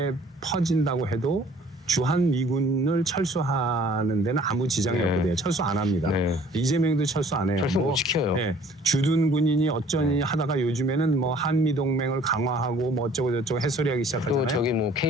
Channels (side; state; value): both; normal; correlation 0.55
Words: 퍼진다고 해도 주한 미군을 철수하는 데는 아무 지장이 네. 없거든요. 철수 안 합니다. 네. 이재명도 철수 안 해요. 철수 못 시켜요. 네. 주둔 군인이 어쩌니 하다가 요즘에는 뭐 한미 동맹을 강화하고 뭐 어쩌고 저쩌고 햇소리하기 시작하잖아요. 또 저기 뭐